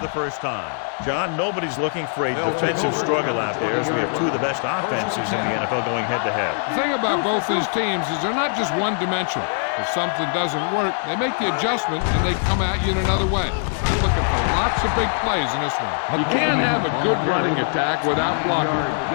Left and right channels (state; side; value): silent; right; 64 dB below the other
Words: first time. John, nobody's looking for a defensive struggle out there, as we have two of the best offenses in the NFL going head-to-head. The thing about both these teams is they're not just one-dimensional. If something doesn't work, they make the adjustment and they come at you in another way. I'm looking for lots of big plays in this one. You can't have a good running attack without blocking.